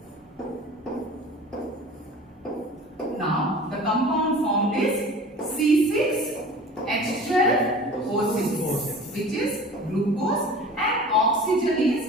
Now the compound formed is C6H12O6, which is glucose, and oxygen is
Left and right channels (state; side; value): normal; both; correlation 0.41